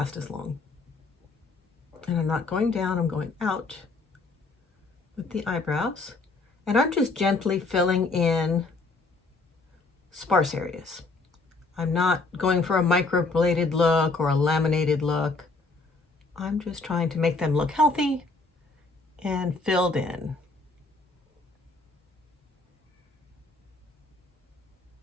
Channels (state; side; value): quieter; right; 3.6 dB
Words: as long. And I'm not going down, I'm going out with the eyebrows. And I'm just gently filling in sparse areas. I'm not going for a microbladed look or a laminated look. I'm just trying to make them look healthy and filled in.